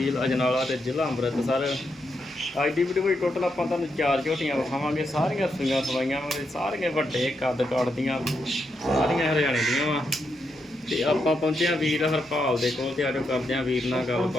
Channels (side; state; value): both; normal; correlation 0.82